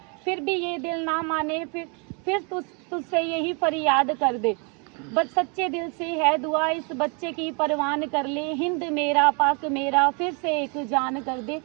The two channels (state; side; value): quieter; left; 35.0 dB